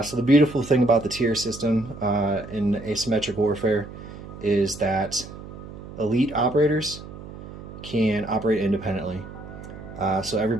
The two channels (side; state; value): right; noise; hum, 13 dB below the sound